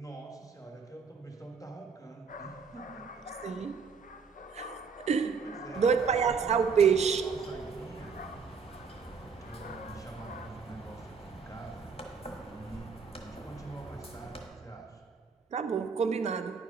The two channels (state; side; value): quieter; left; 5.6 dB